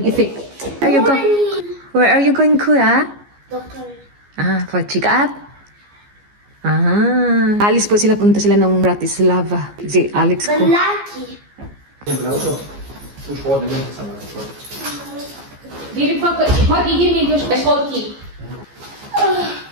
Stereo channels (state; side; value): late; left; 14 ms